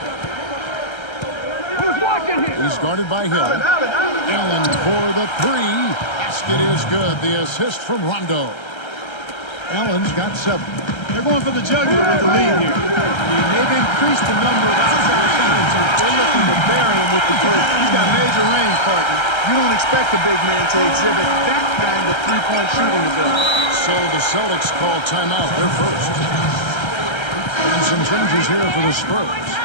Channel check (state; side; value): late; right; 1.3 ms